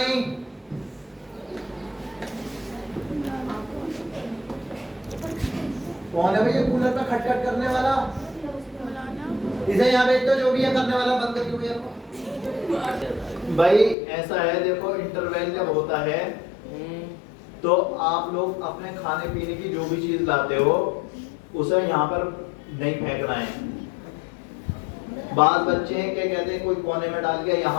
کون ہے بھائی یہ کولر پہ کھٹ کھٹ کرنے والا اسے یہاں بیچ تو جو بھی ہے کرنے والا بند کر دیا بھائی ایسا ہے دیکھو انٹرویل جب ہوتا ہے تو آپ لوگ اپنے کھانے پینے کی جو بھی چیز لاتے ہو اسے یہاں پر نہیں پھینکنا ہے بعض بچے ہیں کہ کہتے ہیں کوئی کونے میں ڈال گیا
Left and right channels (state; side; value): drops out; right; at 14.0 s